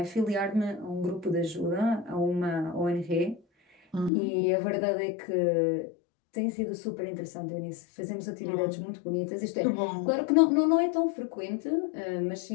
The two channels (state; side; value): drops out; right; at 4.1 s